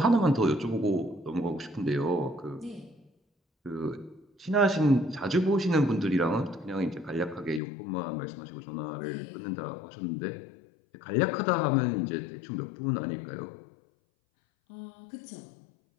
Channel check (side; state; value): right; drops out; at 7.6 s